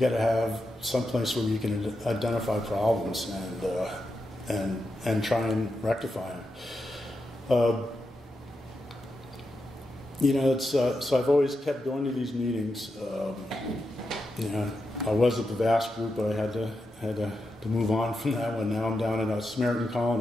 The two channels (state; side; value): normal; both; correlation 0.87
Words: to have some place where you can identify problems and try and rectify them. So I've always kept going to these meetings. I was at the Vass group, but I had to move on from that one. Now I'm down in a Samaritan